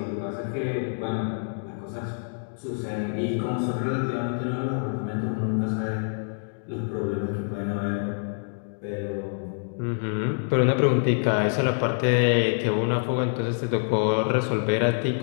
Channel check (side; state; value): right; silent; digital silence